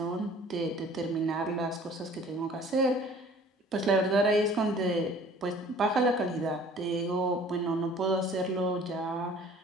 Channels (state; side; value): normal; both; correlation 0.50